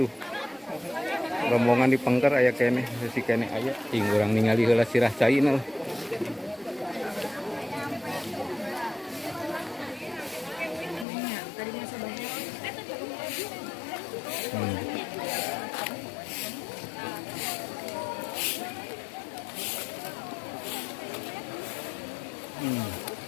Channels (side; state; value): right; drops out; at 11.1 s